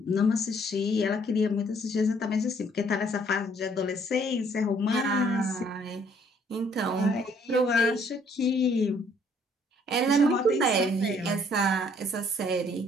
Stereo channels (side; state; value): both; normal; correlation 0.62